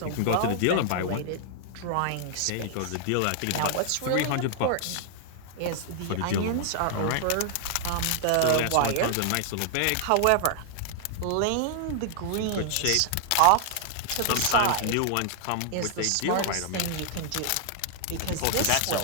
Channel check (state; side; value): different; both; correlation -0.01